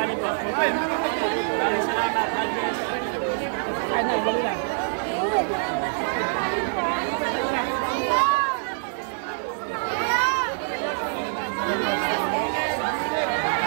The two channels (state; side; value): silent; left; digital silence